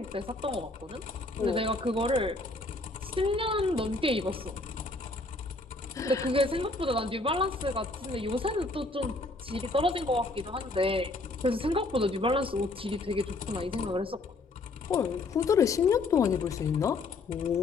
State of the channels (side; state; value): right; quieter; 3.1 dB